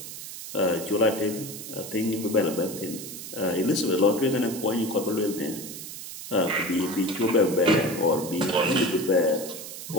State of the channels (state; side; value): noise; right; hiss, 10 dB below the sound